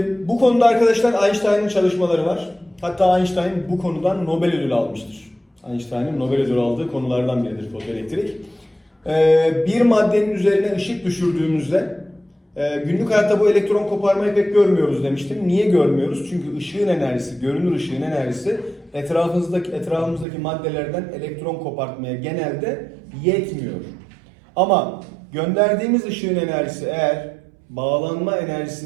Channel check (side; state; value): left; drops out; at 20.2 s